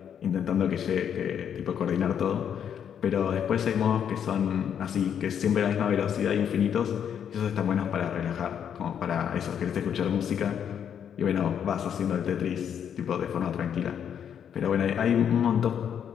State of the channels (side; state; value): right; quieter; 8.5 dB